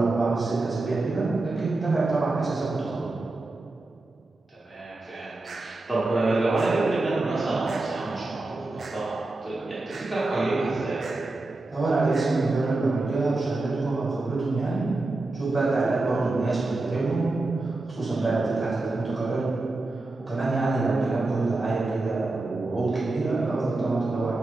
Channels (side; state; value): left; quieter; 3.0 dB